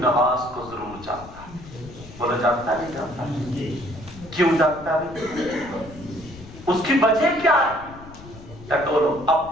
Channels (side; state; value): left; noise; rumble, 17 dB below the sound